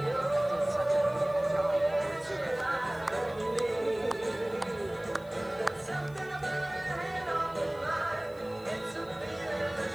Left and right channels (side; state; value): left; noise; hiss, 26 dB below the sound